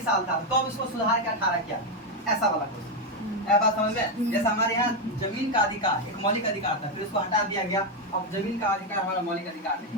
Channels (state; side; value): normal; both; correlation 0.05